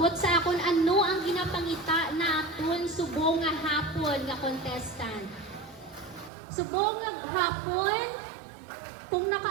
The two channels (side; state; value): left; drops out; at 6.3 s